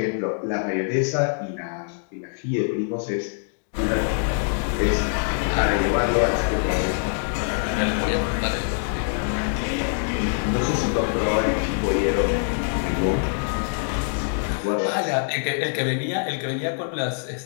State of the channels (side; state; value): right; silent; 60 dB below the other